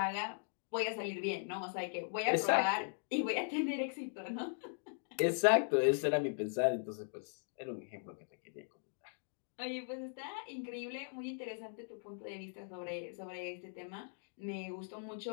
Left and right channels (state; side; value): silent; right; digital silence